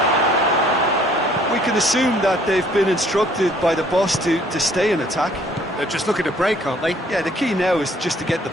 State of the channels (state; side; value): normal; both; correlation 0.60